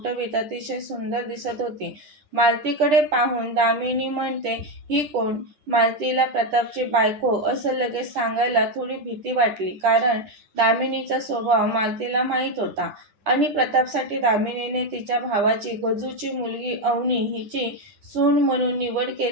अतिशय सुंदर दिसत होती. मालतीकडे पाहून दामिनी म्हणते, ही कोण? मालतीला प्रतापची बायको असं लगेच सांगायला थोडी भीती वाटली, कारण दामिनीचा स्वभाव मालतीला माहीत होता आणि प्रतापसाठी दामिनीने तिच्या भावाची गजूची मुलगी अवनी हिची सून म्हणून निवड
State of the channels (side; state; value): left; late; 10 ms